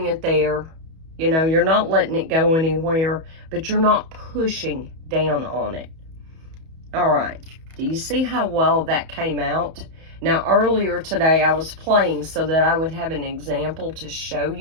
it there. You know, you're not letting it go anywhere, but you're not pushing down on it. All right, do you see how well that came out? Now, earlier today I was playing so that I would have an example to show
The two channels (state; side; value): late; left; 31 ms